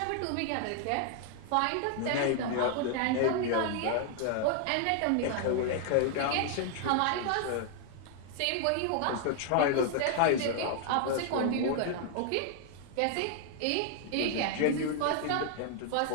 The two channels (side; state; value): both; different; correlation 0.00